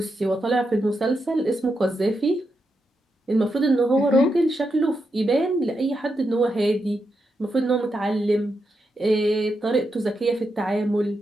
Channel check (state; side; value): normal; both; correlation 0.85